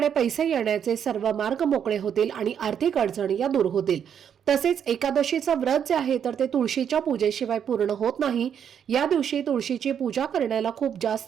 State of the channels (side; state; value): left; quieter; 8.3 dB